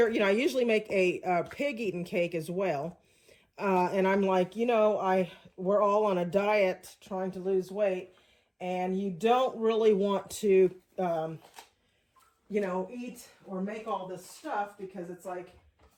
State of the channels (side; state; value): both; identical; correlation 1.00